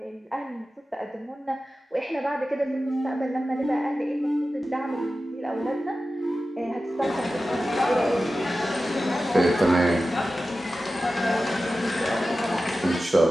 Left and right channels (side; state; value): both; normal; correlation 0.94